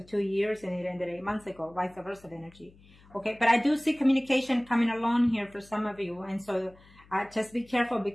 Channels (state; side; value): noise; left; hum, 26 dB below the sound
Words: 2 years and it ended 8 months ago, vice versa energy. Okay, but I do see communication coming along here for some of you. And so just be careful,